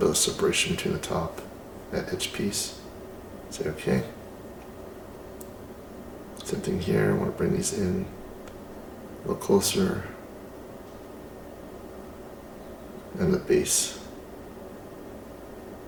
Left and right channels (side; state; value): both; identical; correlation 1.00